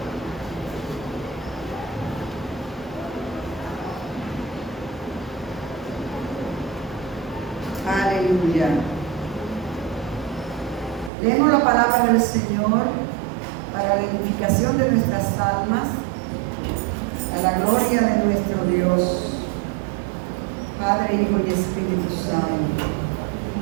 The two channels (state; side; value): drops out; left; at 11.1 s